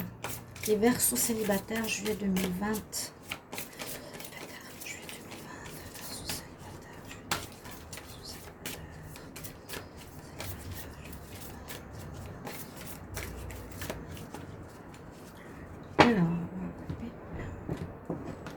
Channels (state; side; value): identical; both; correlation 1.00